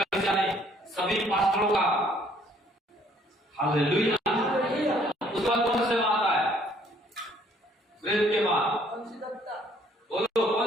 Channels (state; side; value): normal; both; correlation 0.62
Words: नहीं, सभी पास्टरों का। हालेलुया। उसके बाद कौन सा सेवा आता है? प्रेरित के बाद बोलो